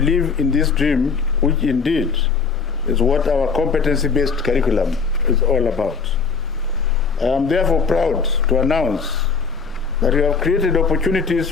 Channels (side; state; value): right; quieter; 5.2 dB